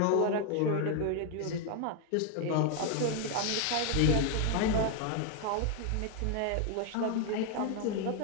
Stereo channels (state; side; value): different; both; correlation 0.01